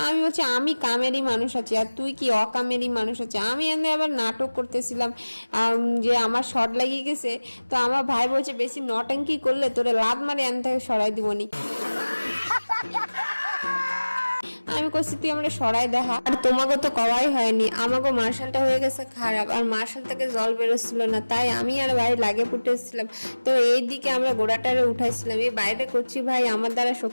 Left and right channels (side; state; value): both; inverted; correlation -1.00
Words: আমি বলছি আমি কামেরই মানুষ আছি আর তুই কি অকামেরই মানুষ আছে। আমি এনে আবার নাটক করতেছিলাম যে আমার শর্ট লাগিয়ে গেছে। তো আমার ভাই বলছে বেশি নটঙ্কি করলে তোরে লাত মারে এন থেকে সরাই দিবনি। আমি করছি তুই আমরা সরাই দেখা। আর তোমাকে তো কওয়াই হয়নি, আমাকে মার্শালটা হয়ে গেছে খারাপ আর মার্শাল থেকে জল বেরোচ্ছিল না, তাই আমি আর ভাই লাগে ফুটেছিলাম। তো এই দিকে আমরা গোড়াটারে উঠাইছিলাম, এই বাইরে করছি ভাই আমার দ্বারা